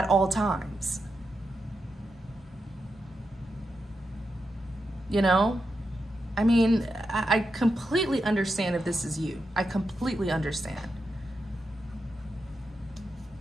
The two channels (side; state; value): both; normal; correlation 0.87